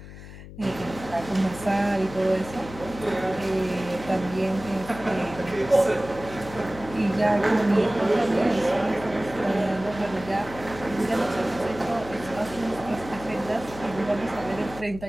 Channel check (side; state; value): left; noise; hum, 15 dB below the sound